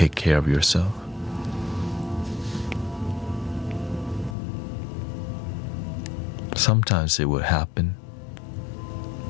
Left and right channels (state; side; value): drops out; right; at 4.4 s